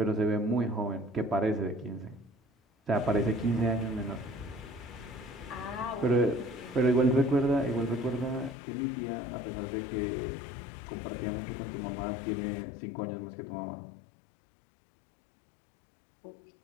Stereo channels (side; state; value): right; drops out; at 8.6 s